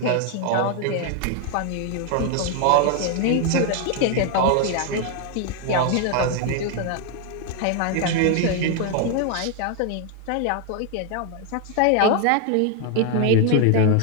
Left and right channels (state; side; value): different; both; correlation 0.01